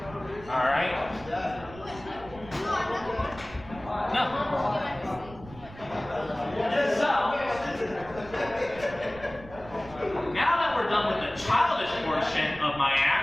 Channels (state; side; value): noise; right; rumble, 18 dB below the sound